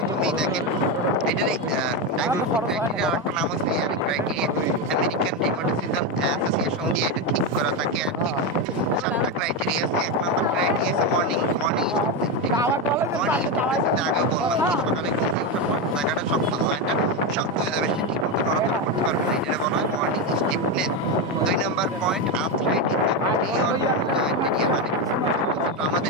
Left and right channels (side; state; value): both; normal; correlation 0.11